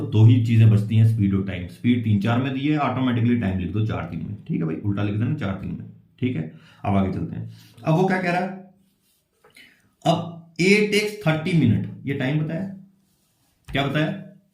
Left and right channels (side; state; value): both; identical; correlation 1.00